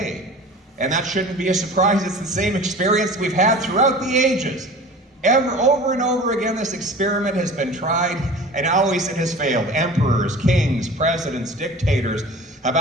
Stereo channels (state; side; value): normal; both; correlation 0.40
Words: And that shouldn't be a surprise. It's the same experience we've had throughout the ages. Over and over again, this experiment has been tried, and always it has failed. Emperors, kings, presidents, dictators have